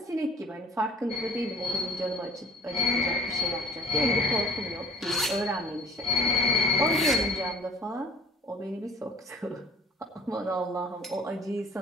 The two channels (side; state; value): both; normal; correlation 0.49